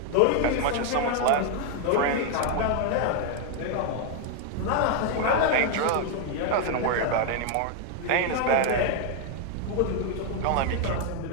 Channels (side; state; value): both; different; correlation 0.00